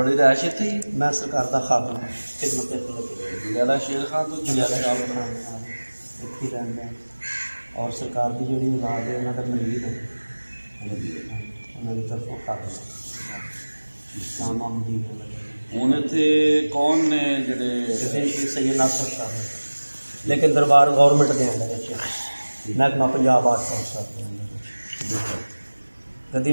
रैश इत्थे मैं सरकार का खादम खिदमत जलाला शेर खान तो जलाला शाह इत्थे रहंदा और सरकार की जी औलाद है उन्होंने मरीज है उन्होंने तरफों खादम हूँ इत्थे कौन ने जेडे सैयद नासर शाह लेकिन दरबार गौरमेंट के अंदर महकमा पंजाब आर्ट काउंसिल गद्दी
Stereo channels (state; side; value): inverted; both; correlation -1.00